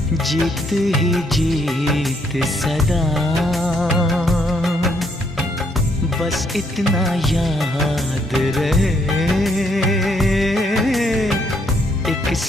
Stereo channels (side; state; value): both; normal; correlation 0.71